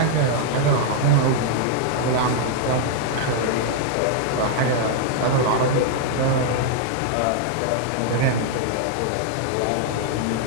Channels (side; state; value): both; different; correlation -0.01